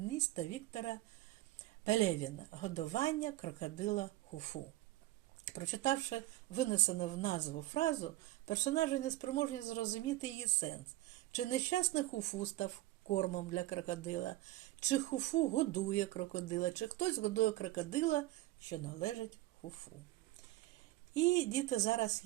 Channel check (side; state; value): left; quieter; 16.8 dB